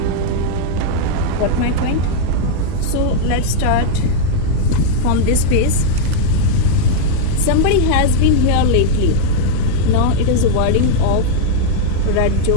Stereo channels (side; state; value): both; different; correlation -0.01